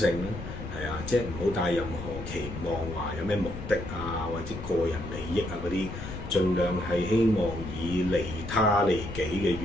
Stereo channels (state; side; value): noise; left; rumble, 9 dB below the sound